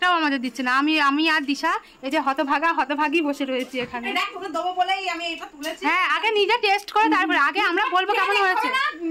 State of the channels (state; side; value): identical; both; correlation 1.00